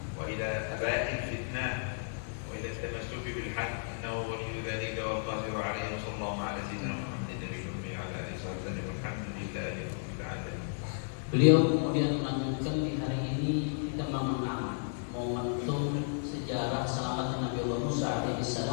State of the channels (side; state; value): right; silent; digital silence